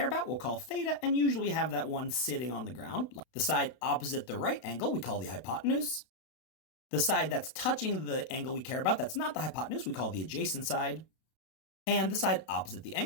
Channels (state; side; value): late; right; 32 ms